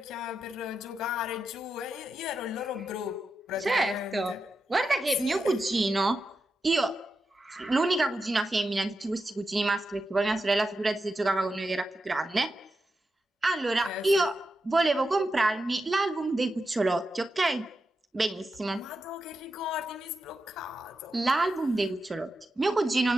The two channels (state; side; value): normal; both; correlation 0.88